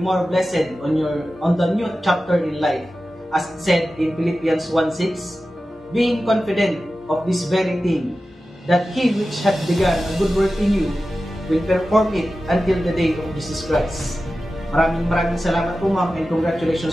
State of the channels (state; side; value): normal; both; correlation 0.94